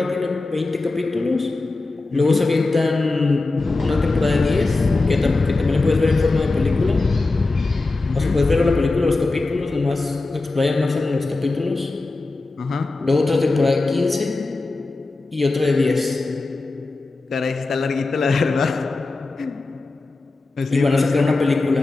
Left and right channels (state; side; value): quieter; right; 3.3 dB